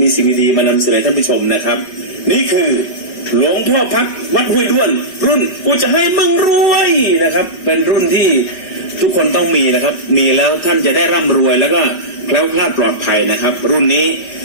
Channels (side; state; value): right; late; 5.3 ms